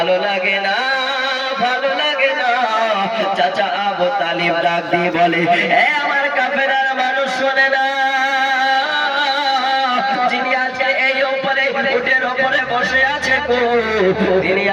লাগে না, ভালো লাগে না। চাচা আবু তালিব ডাক দিয়ে বলে, এ আমার কাফেরার মানুষ শোনে না, যিনি আজকে এই উপরে উটের উপরে বসে আছে তিনি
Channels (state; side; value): identical; both; correlation 1.00